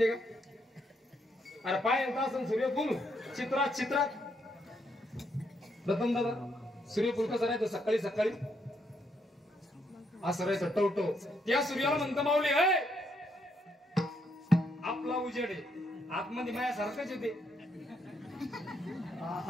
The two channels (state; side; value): normal; both; correlation 0.75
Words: का? अरे पाय येत असं सूर्यफूल चित्रात प्रथम दादा सूर्यफूल कसं राहतं? सकाळी सकाळी असं राहायचं टवटो. त्या सूर्याला म्हणतं माऊली हे आपला उजेड आहे, आतमध्ये मायासारखंच येते.